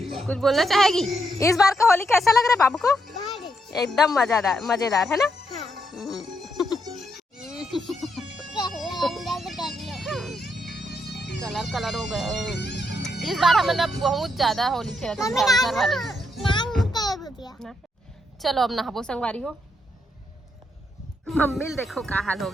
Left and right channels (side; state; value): both; normal; correlation 0.79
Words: कुछ बोलना चाहेगी? इस बार का होली कैसा लग रहा है बाबू को? एकदम मजेदार मजेदार है ना? कलर कलर हो गए इस बार। हमने बहुत ज्यादा होली खेला था वाले। चलो अब नहाबो संगवारी हो। मम्मी देखो का हाल हो